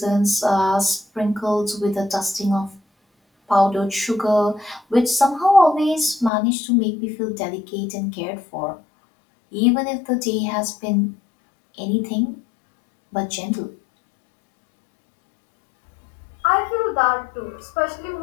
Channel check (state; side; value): drops out; right; at 6.3 s